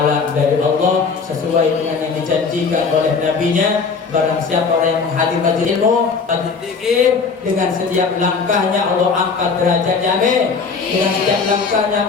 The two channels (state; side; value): quieter; right; 5.0 dB